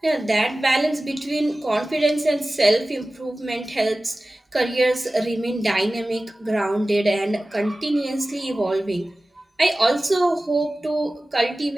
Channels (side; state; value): both; normal; correlation 0.97